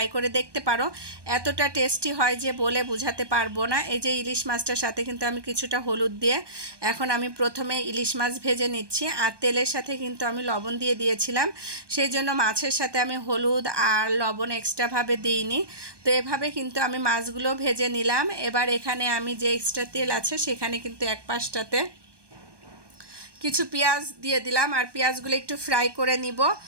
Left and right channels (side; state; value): left; late; 1.2 ms